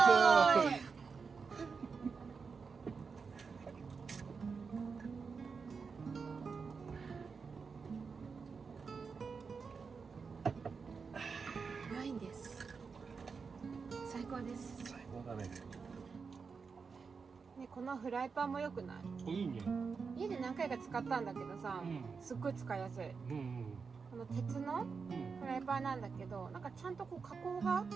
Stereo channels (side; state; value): left; quieter; 5.2 dB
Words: イ。ワインです。最高です。最高だね。ね、このフライパンも良くない？いいね。家で何回か使ったんだけどさ、すっごい使いやすい。この鉄のフライパンなんだけど、なんかちゃんとこう加工が